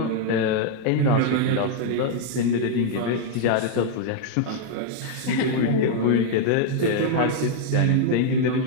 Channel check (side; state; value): both; different; correlation 0.00